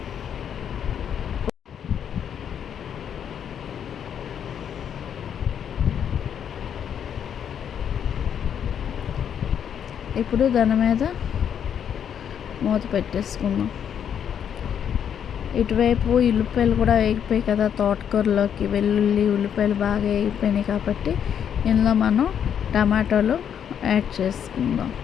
ఇప్పుడు దాని మీద మూత పెట్టేసుకుందాం. ఇటువైపు ఉల్లిపాయలు కూడా వేగిపోయాయి కదా తోటకూరలోకి. వెల్లుల్లి, ఉల్లిపాయలు బాగా వేగిపోయినాయి కాబట్టి ఇందులో మనం టమాటాలు యాడ్ చేసుకుందాం.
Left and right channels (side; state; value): right; quieter; 8.5 dB